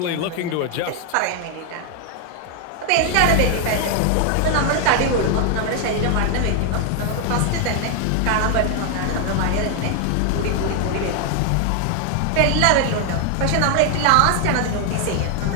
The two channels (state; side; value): different; both; correlation 0.00